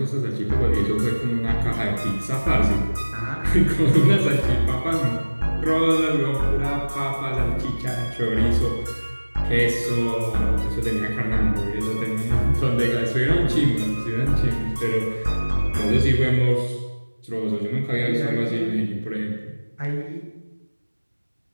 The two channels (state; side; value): inverted; both; correlation -1.00